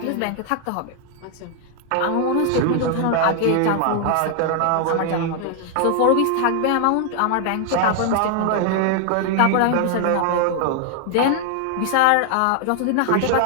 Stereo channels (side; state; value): both; different; correlation 0.00